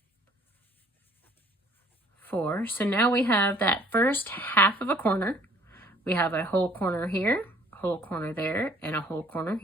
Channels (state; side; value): normal; both; correlation 0.57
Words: 4. So now we have that first half of a corner. We have a whole corner here, a whole corner there, and a whole corner